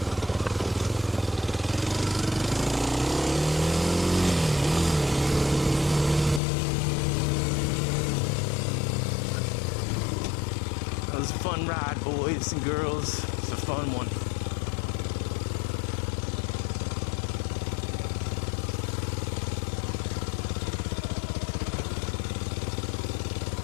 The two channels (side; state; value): right; drops out; at 6.4 s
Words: It was a fun ride, boys and girls. It's a fun one.